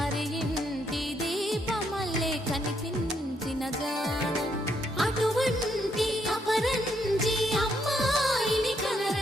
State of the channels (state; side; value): normal; both; correlation 0.75